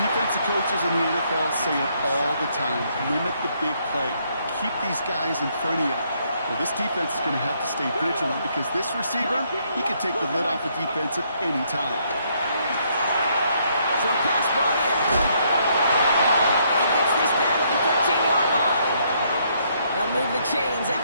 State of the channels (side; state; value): both; inverted; correlation -0.71